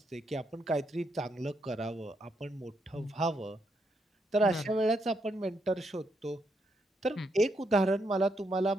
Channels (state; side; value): normal; both; correlation 0.78